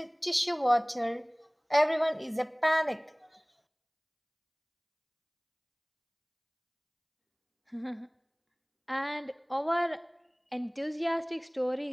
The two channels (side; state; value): both; identical; correlation 1.00